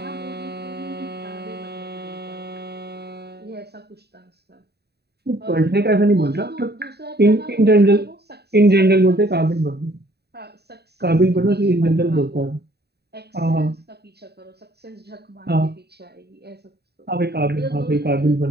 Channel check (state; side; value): late; left; 0.48 ms